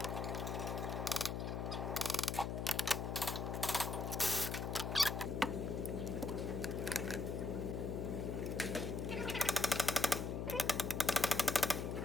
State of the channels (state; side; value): noise; left; hum, 2 dB below the sound